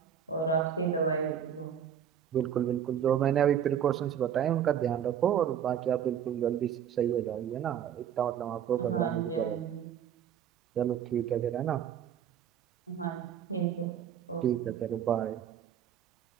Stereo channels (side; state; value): left; quieter; 9.0 dB